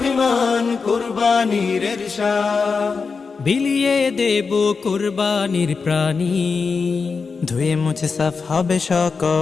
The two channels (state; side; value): quieter; right; 4.9 dB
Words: কুরবানির ঈর্ষা। বিলিয়ে দেব কোরবানির প্রাণী, ধুয়ে মুছে সাফ হবে